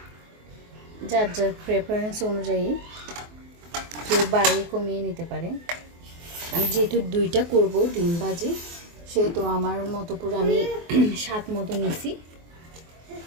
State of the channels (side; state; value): left; late; 24 ms